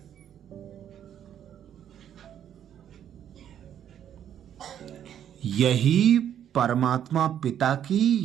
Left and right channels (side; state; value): left; quieter; 9.9 dB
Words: यही परमात्मा पिता की